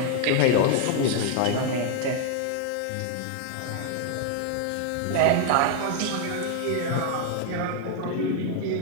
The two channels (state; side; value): different; both; correlation 0.00